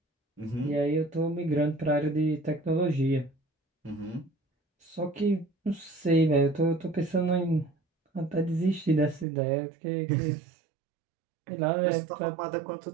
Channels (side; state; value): left; drops out; at 9.2 s